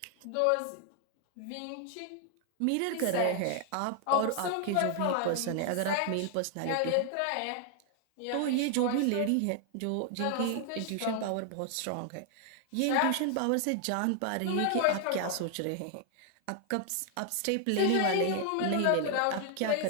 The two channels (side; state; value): both; different; correlation 0.00